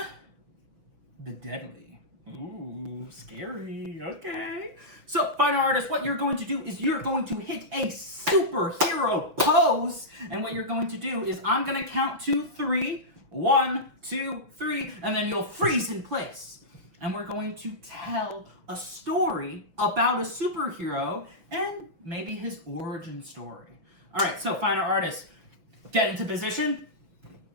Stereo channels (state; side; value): late; left; 6.1 ms